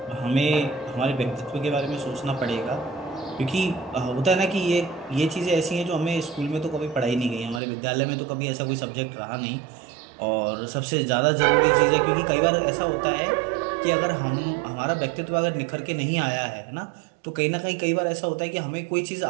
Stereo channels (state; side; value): drops out; left; at 7.6 s